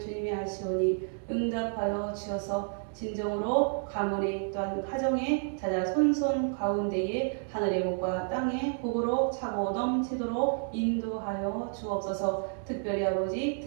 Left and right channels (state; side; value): silent; left; 58 dB below the other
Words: 아시오니 응답하여 주셔서 진정으로 가문에 또한 가정에 자자 손손 가운데에 하늘의 복과 땅의 복으로 차고 넘치도록 인도하여 주옵소서. 특별히 아버지